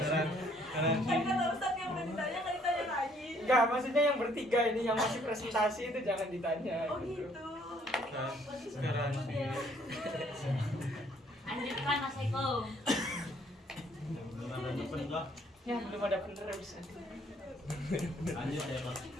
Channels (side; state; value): both; normal; correlation 0.64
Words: Garansi. Kan kata Ustadz yang udah ditanya nggak ditanya lagi. Enggak, maksudnya yang bertiga ini yang masih presentasi itu jangan ditanya. Oh gitu. Garansi. Lanjutkan Mas Eko. Ya belum ada penerus. Lanjut ya Pak.